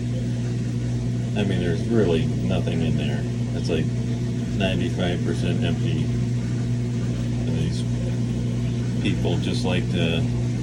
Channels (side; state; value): both; identical; correlation 1.00